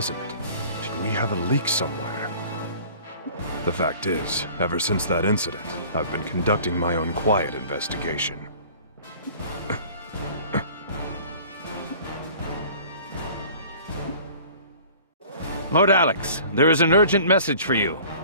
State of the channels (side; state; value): both; inverted; correlation -0.47